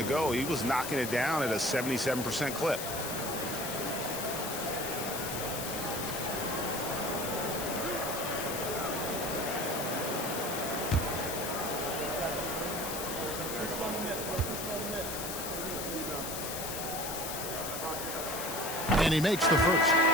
he was knocking it down at a 77% clip. And he makes the first.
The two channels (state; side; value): noise; left; hiss, 5 dB below the sound